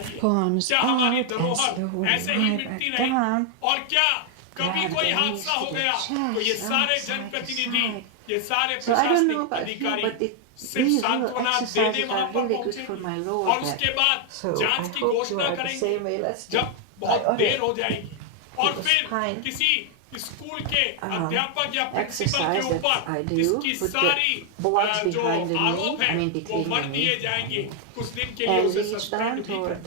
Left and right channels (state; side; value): different; both; correlation 0.00